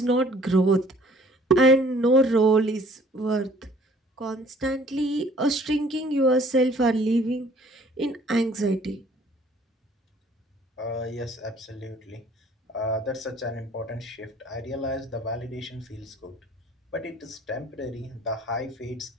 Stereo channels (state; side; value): normal; both; correlation 0.56